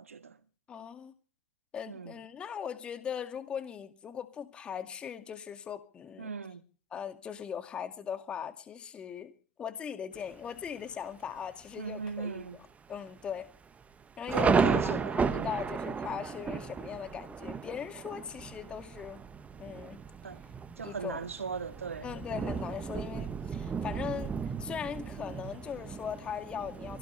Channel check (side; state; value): both; normal; correlation 0.58